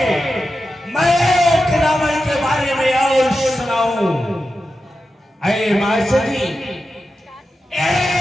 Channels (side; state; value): both; normal; correlation 0.91